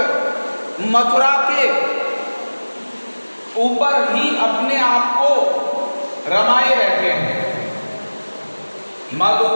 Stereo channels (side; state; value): both; inverted; correlation -1.00